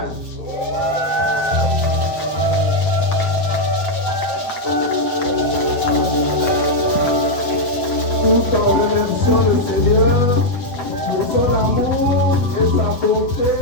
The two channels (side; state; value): right; late; 8.0 ms